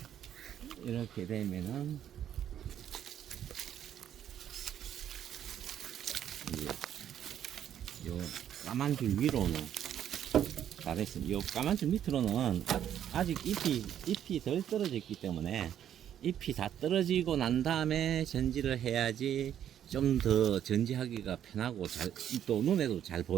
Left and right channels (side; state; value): left; quieter; 10.1 dB